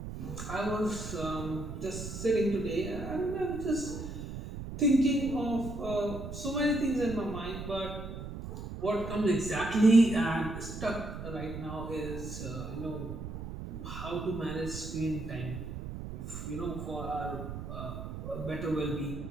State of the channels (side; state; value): right; noise; rumble, 8 dB below the sound